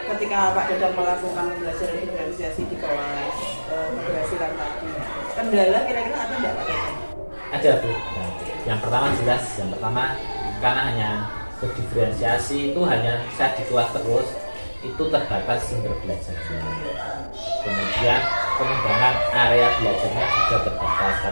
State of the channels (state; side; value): inverted; both; correlation -1.00